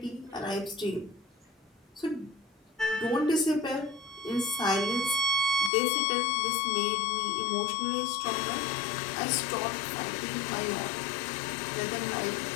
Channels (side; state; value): right; drops out; at 5.7 s